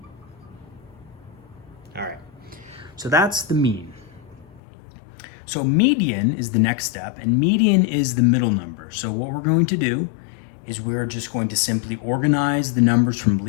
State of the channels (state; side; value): drops out; right; at 4.6 s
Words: All right, so that's the mean. So median is the next step, and median is the middle number. So what we're going to do is we're just going to simply organize the numbers from